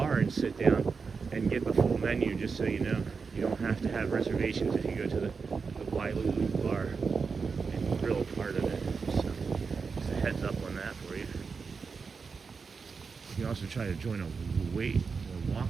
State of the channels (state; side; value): quieter; left; 5.1 dB